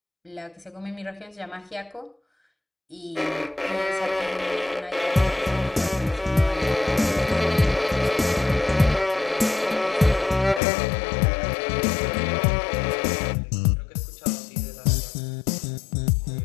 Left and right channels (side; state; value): right; drops out; at 10.6 s